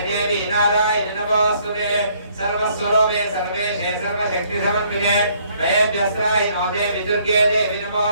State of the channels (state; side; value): inverted; both; correlation -0.65